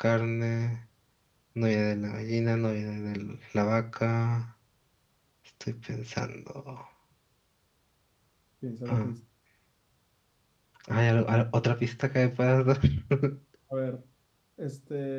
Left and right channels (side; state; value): both; identical; correlation 1.00